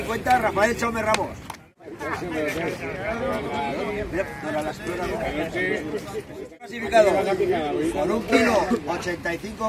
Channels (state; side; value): identical; both; correlation 1.00